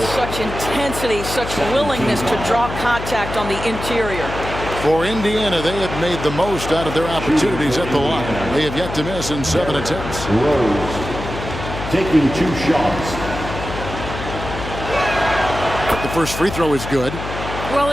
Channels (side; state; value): left; noise; hum, 8 dB below the sound